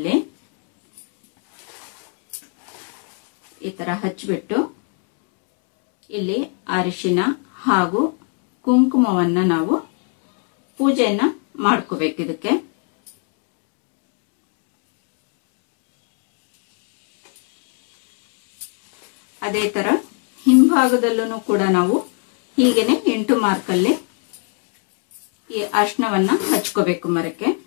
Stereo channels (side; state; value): right; quieter; 38.9 dB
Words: ಈ ತರ ಹಚ್ಬಿಟ್ಟು ಇಲ್ಲಿ ಅರಿಶಿನ ಹಾಗೂ ಕುಂಕುಮವನ್ನ ನಾವು ಪೂಜೆಯನ್ನ ಮಾಡ್ಕೋಬೇಕು. ಇದಕ್ಕೆ ಅದೇ ತರ ಹಿಂಭಾಗದಲ್ಲೂ ಕೂಡ ನಾವು ಹೀಗೇನೆ ಇಂಟು ಮಾರ್ಕಲ್ಲಿ ಈ ಅರ್ಶನವನ್ನ ಹಚ್ಕೋಬೇಕು ಮರಕ್ಕೆ.